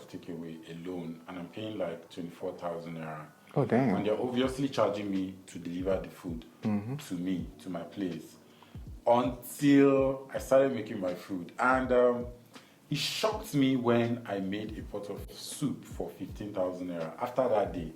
takeaway alone, and I'm paying like 24,000 naira. Oh, damn. And they're obviously charging me to deliver the food to me, to my place, until I started making my food. And it shocked me when I made a pot of soup for 15,000 naira. After that day,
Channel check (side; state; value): both; identical; correlation 1.00